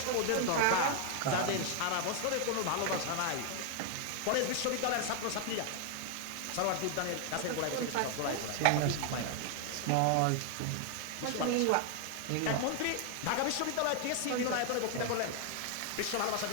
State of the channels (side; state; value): both; different; correlation 0.00